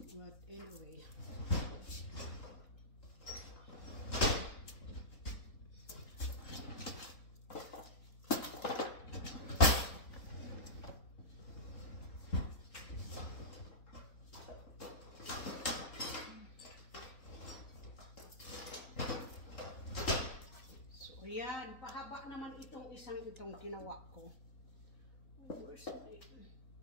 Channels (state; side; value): late; right; 3.7 ms